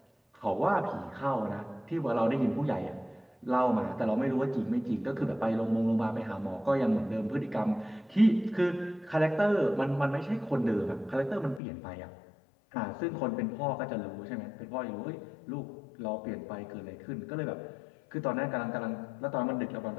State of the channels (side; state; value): right; drops out; at 11.6 s